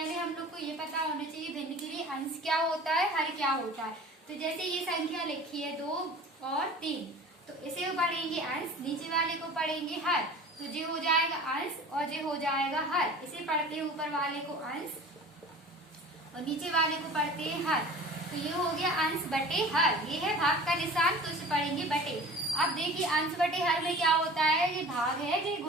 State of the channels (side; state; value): both; normal; correlation 0.41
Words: हम लोग को ये पता होना चाहिए भिन्न के लिए अंश क्या होता है, हर क्या होता है। तो जैसे ये संख्या लिखी है 2 और 3, तो इसे पढ़ेंगे अंश, नीचे वाले को पढ़ेंगे हर। तो जे हो जाएगा अंश और जे हो जाएगा हर। इसे पढ़ते हैं ऊपर वाले को अंश और नीचे वाले को पढ़ते हैं हर। तो ये हो गया अंश बटे हर। ये है भाग का निशान, तो इसे पढ़ेंगे बटे। अब देखिए अंश बटे हर में क्या होता है, ये भाग है, ये